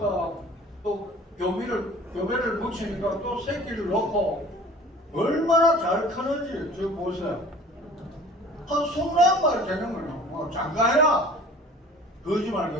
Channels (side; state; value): both; normal; correlation 0.46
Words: 또 교배를 붙이니까 또 새끼를 넣고 얼마나 잘 크는지 저 보세요. 한 21마리 되는 거예요. 뭐 장가야 거짓말